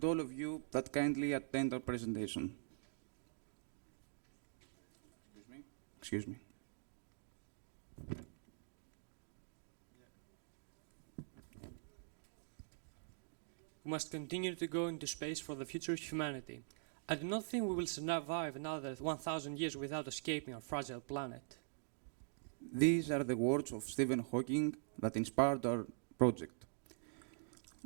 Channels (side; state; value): left; silent; digital silence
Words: all of you that kindly attend our presentation. Excuse me. We must continue to go into space for the future of humanity. I do not think we will survive another 1,000 years without escaping our fragile planet. These are the words of Stephen Hawking that inspired our project.